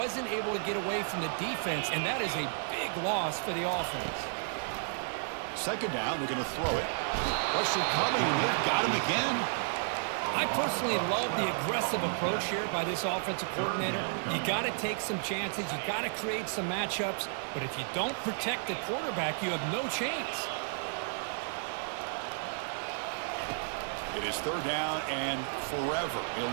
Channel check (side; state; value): left; silent; 56 dB below the other